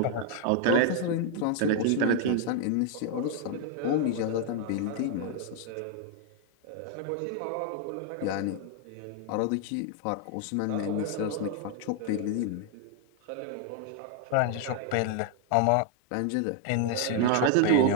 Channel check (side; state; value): both; different; correlation 0.00